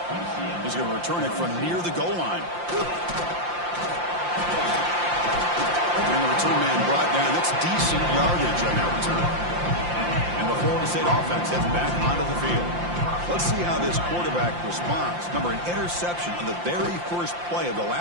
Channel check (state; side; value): late; left; 5.7 ms